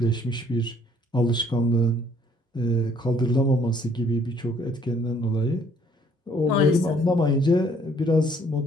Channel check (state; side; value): normal; both; correlation 0.62